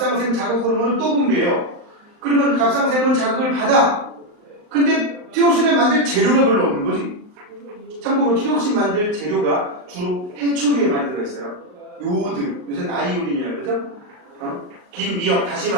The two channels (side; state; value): left; late; 39 ms